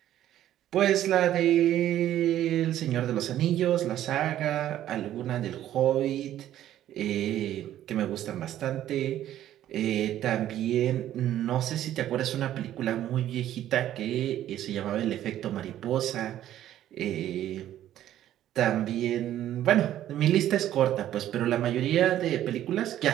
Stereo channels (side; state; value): left; quieter; 12.3 dB